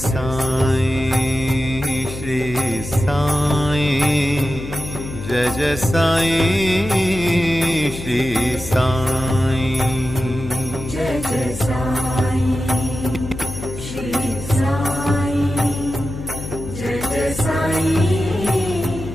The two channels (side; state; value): left; noise; hum, 10 dB below the sound